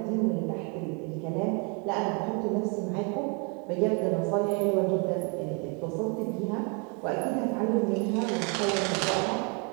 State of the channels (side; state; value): left; quieter; 33.7 dB